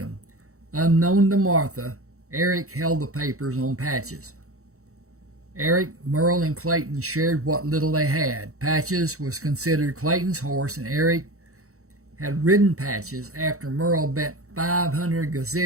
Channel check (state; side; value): late; left; 0.64 ms